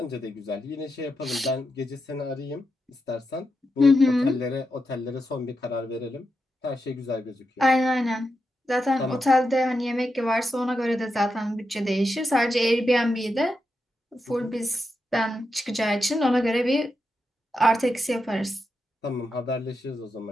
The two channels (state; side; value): normal; both; correlation 0.86